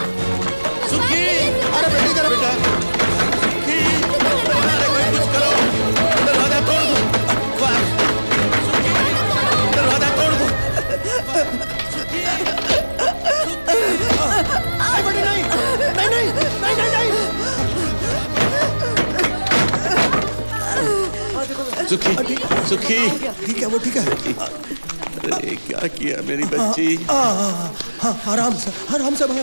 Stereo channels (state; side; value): inverted; both; correlation -1.00